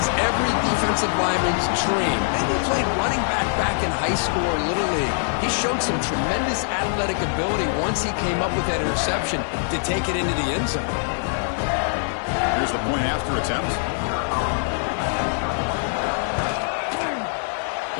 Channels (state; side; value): silent; right; 63 dB below the other